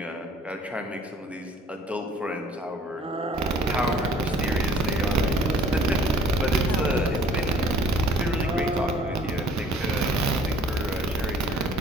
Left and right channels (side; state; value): both; normal; correlation 0.55